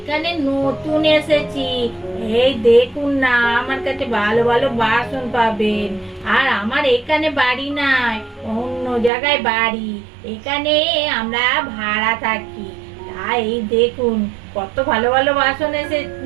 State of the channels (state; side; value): drops out; left; at 9.1 s